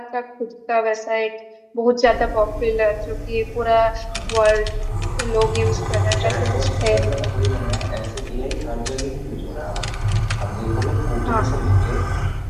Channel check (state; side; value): identical; both; correlation 1.00